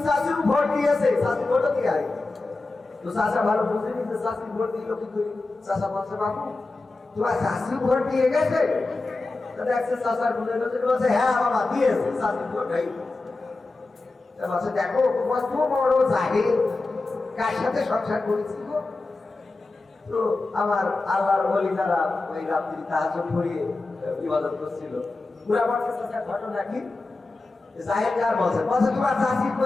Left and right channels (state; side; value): quieter; right; 3.4 dB